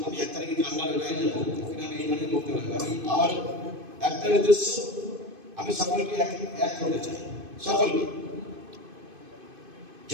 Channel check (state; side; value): late; left; 2.5 ms